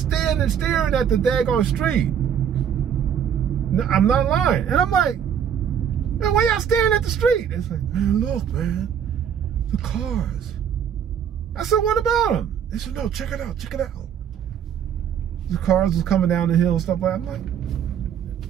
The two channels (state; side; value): quieter; left; 8.5 dB